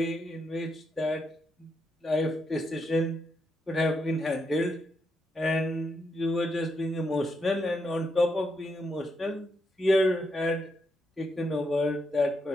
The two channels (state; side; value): normal; both; correlation 0.81